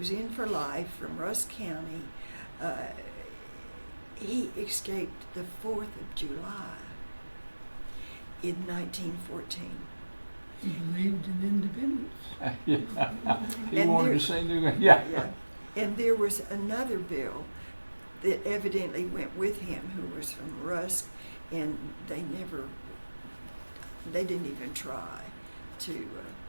in for life from Rusk County. He escaped the 4th of July in 1914. He believed in independence. Yeah. He And wanted there- to say new. Yeah. And there was another Bill that evidently went with him who was from Rusk, and they didn't even try to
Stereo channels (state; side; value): inverted; both; correlation -1.00